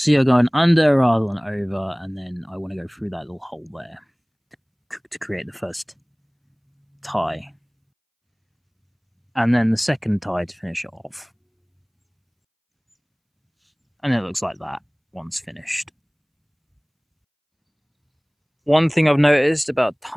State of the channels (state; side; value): identical; both; correlation 1.00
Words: you're going under rather than over, and then I want to go through that little hole there to create the first tie. And then the second tie to finish it off. And it looks like that once finished. One thing I've noticed about